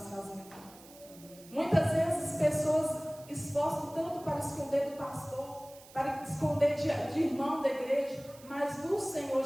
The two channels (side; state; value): right; noise; hiss, 22 dB below the sound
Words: fazendo. Muitas vezes pessoas esforçam tanto para esconder do pastor, para esconder de irmão da igreja, mas do Senhor